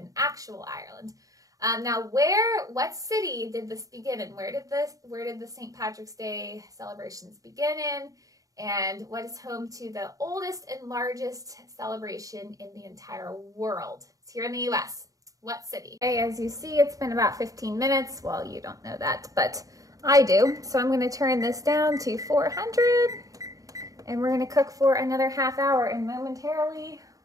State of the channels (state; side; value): late; left; 0.17 ms